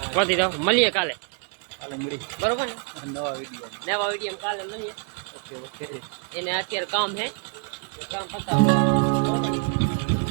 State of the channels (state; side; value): quieter; left; 38.0 dB